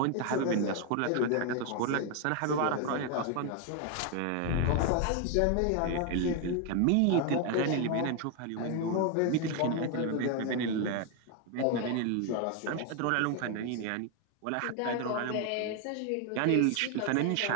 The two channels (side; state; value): both; different; correlation 0.01